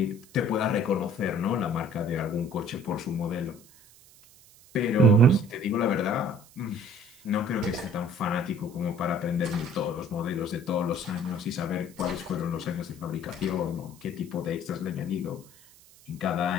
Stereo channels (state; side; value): noise; right; hiss, 24 dB below the sound